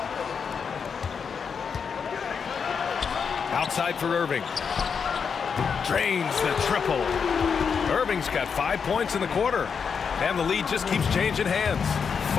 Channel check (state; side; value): quieter; right; 6.3 dB